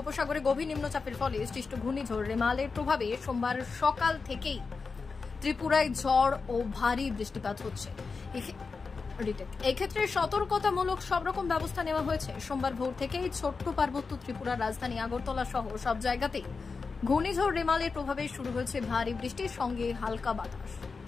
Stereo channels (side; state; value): right; quieter; 4.6 dB